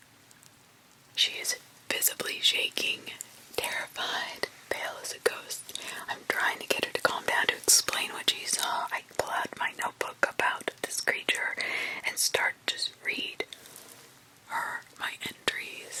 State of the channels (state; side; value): identical; both; correlation 1.00